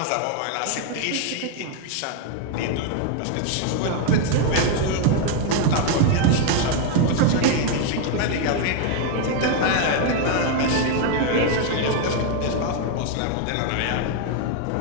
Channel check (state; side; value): different; both; correlation 0.01